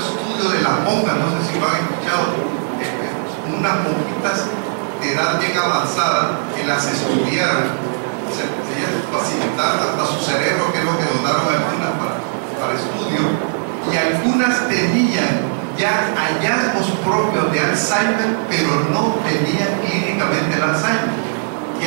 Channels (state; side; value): silent; left; digital silence